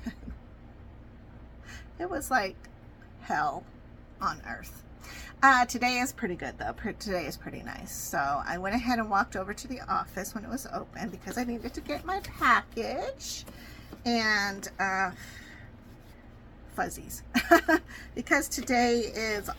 It was like hell on earth. Today is pretty good though. Today is pretty nice. So I went ahead and walked over to the office when it was open because I needed to get my package and fuzzies because today is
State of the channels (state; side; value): identical; both; correlation 1.00